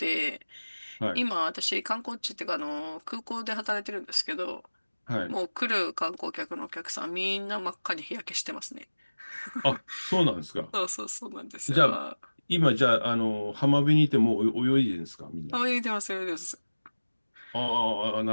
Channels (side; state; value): both; inverted; correlation -1.00